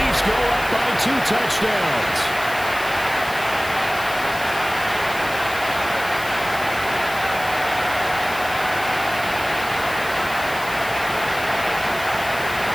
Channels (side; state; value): left; noise; hiss, 14 dB below the sound